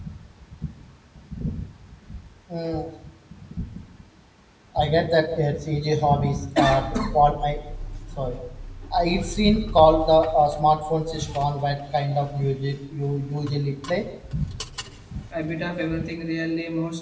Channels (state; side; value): identical; both; correlation 1.00